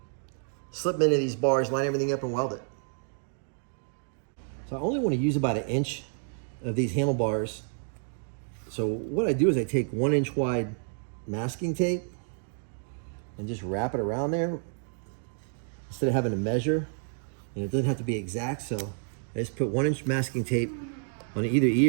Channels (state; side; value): silent; left; 58 dB below the other